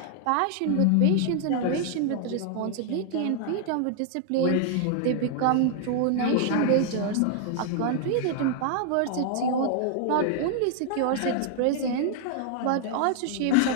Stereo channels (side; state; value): both; different; correlation 0.00